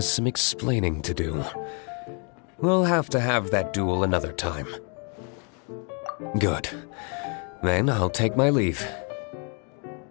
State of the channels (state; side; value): quieter; right; 38.2 dB